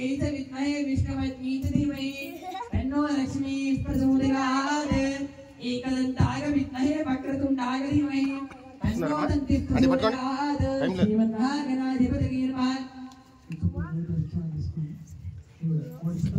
च विद्महे विष्णुपत्न्यै च धीमहि तन्नो लक्ष्मीः प्रचोदयात् एकदन्ताय विद्महे वक्रतुण्डाय धीमहि तन्नो दन्तिः प्रचोदयात् श्रीमन्महागणाधिपतये नमः।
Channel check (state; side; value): identical; both; correlation 1.00